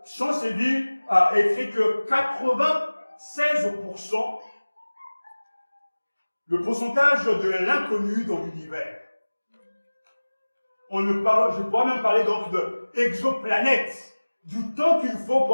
Chancellerie a écrit que 96%, le pourcentage de l'inconnu dans l'univers. Je pourrais même parler donc de exoplanètes, du temps qu'il faut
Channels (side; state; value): both; inverted; correlation -1.00